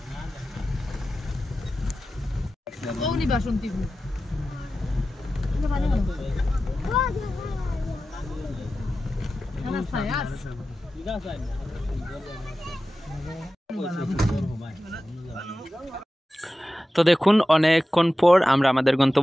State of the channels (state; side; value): normal; both; correlation 0.94